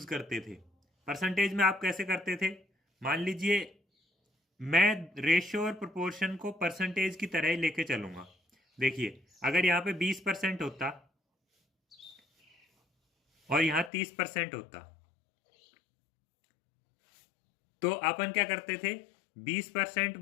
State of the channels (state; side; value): drops out; right; at 13.9 s